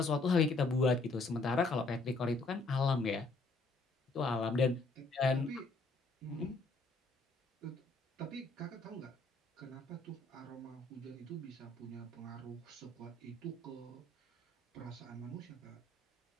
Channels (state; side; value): quieter; right; 3.3 dB